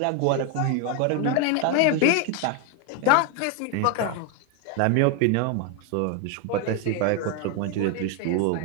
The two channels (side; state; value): both; different; correlation 0.01